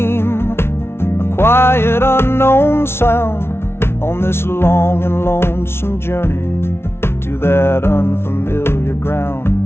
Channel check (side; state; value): right; late; 0.12 ms